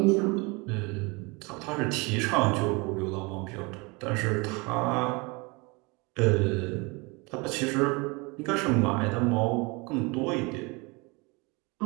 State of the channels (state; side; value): quieter; left; 27.5 dB